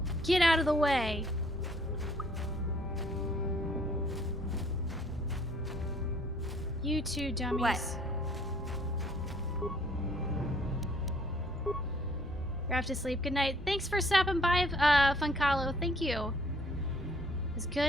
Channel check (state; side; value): normal; both; correlation 0.60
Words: Get out of the way! You two dummies. What? You're off to sleep. Good night. Thanks for stopping by, Funkalo. Thank you. It was